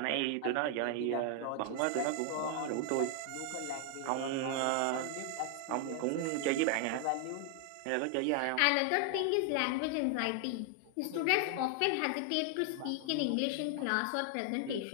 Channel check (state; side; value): different; both; correlation 0.00